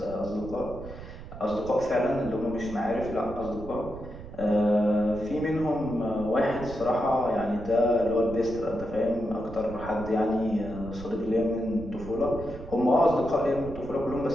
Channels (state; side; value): noise; right; rumble, 13 dB below the sound